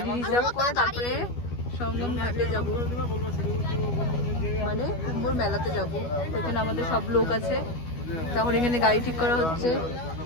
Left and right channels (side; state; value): right; late; 12 ms